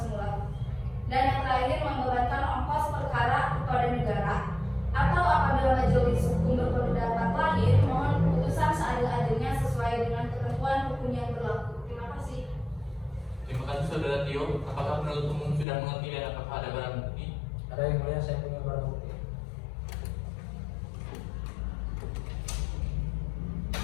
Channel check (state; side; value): drops out; right; at 15.7 s